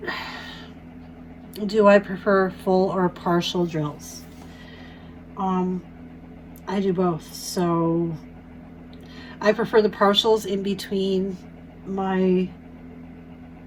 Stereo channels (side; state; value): both; identical; correlation 1.00